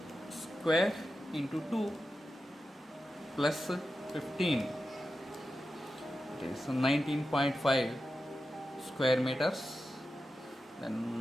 square into 2 plus 15. It is 19.5 square meters.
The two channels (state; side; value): normal; both; correlation 0.91